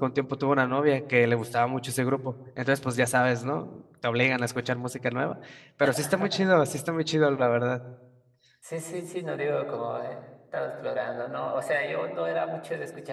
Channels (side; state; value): both; identical; correlation 1.00